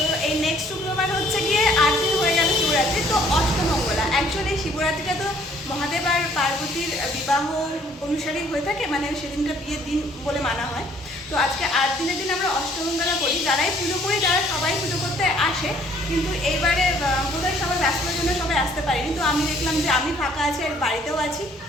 এই নেক্সট শুক্রবার হচ্ছে গিয়ে 8 দিন হয়ে গেল শিবরাত্রি, তো অষ্টমঙ্গলা। অ্যাকচুয়ালি শিবরাত্রিটা তো মহাদেব আর পার্বতীর বিবাহ অনুসারেই হয়ে থাকে, মানে সেদিনটা বিয়ের দিন বলে মানা হয়। তো আজকে 8 দিনের দিন আমরা অষ্টমঙ্গলা করি। যারাই পুজো করি তারা সবাই পুজো করতে আসে, কিন্তু এইবারে বোধহয় সবাই ব্যস্ততার জন্য সবাই আসতে পারিনি। তো আমি দেখলাম যে আমি ফাঁকা আছি আর বাড়িতেও আছি,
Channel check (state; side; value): normal; both; correlation 0.60